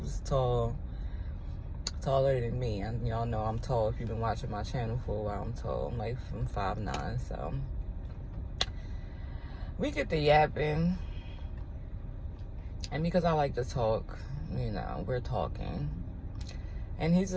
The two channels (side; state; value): both; identical; correlation 1.00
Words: tall, taller than me, and y'all know I'm tall. If you've been watching my channel for a while, I'm tall. I'm like from 5'9", so we get to yapping, and because I like to talk, you know, we're talking. And he's